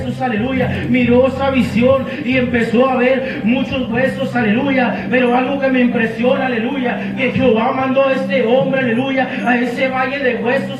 aleluya. Miró esa visión y empezó a ver muchos huesos, aleluya. Pero algo que me impresiona, aleluya, que Jehová mandó a este hombre, aleluya, a ese valle de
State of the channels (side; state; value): both; identical; correlation 1.00